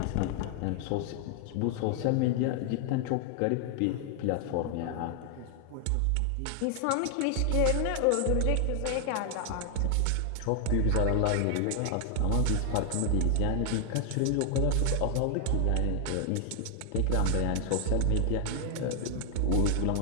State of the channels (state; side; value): different; both; correlation 0.00